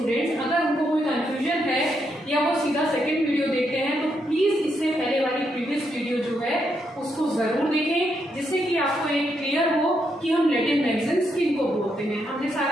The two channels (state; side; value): normal; both; correlation 0.79